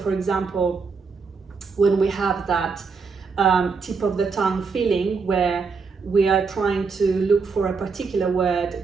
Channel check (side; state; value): left; quieter; 4.9 dB